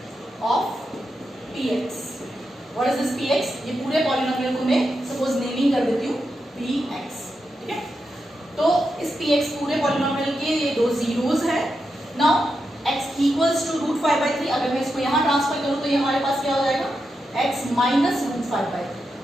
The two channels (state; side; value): normal; both; correlation 0.87